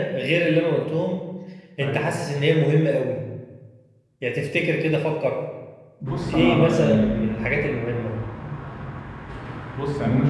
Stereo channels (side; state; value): both; identical; correlation 1.00